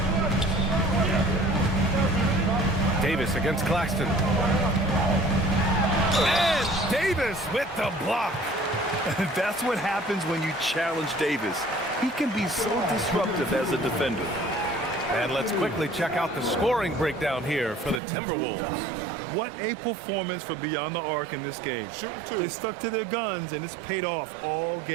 Davis against Claxton. And Davis with the block. That's what happens when you challenge Davis. He can be so disruptive as a defender. And let's quickly check out the scoring breakdown here for the Timberwolves. What a performance for Beyond the Arc in this game. Shooting 2. They stuck to their guns, and it's paid off all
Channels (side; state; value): left; drops out; at 18.0 s